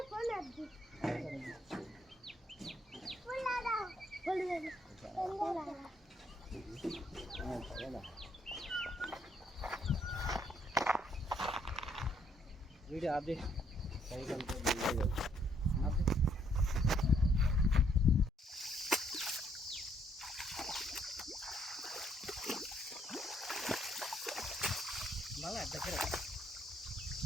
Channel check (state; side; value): normal; both; correlation 0.70